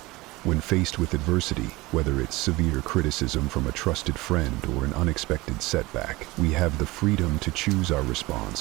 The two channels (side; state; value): left; quieter; 21.0 dB